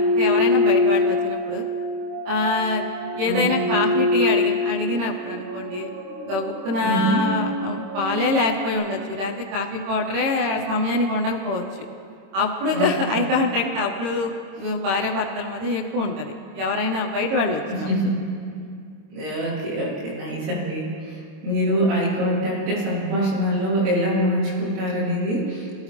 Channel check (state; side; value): late; left; 26 ms